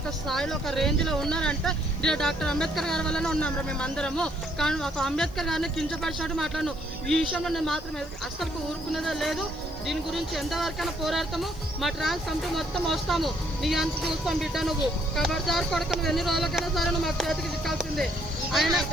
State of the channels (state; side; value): noise; left; hiss, 25 dB below the sound